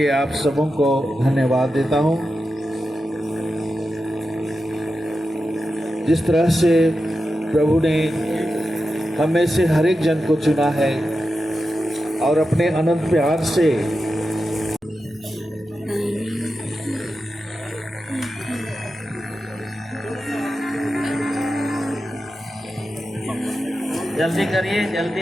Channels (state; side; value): normal; both; correlation 0.90